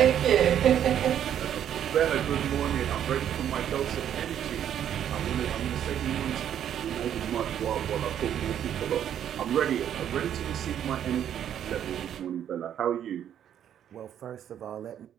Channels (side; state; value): left; quieter; 9.9 dB